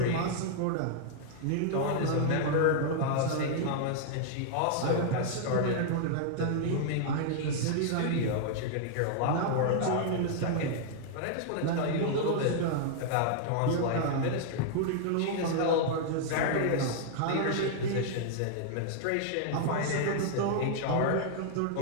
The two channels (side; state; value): both; different; correlation -0.01